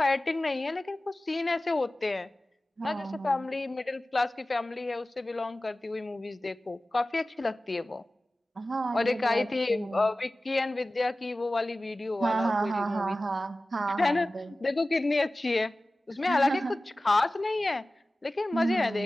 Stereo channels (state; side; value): normal; both; correlation 0.96